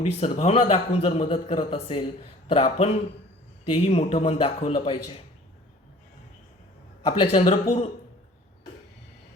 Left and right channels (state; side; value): normal; both; correlation 0.49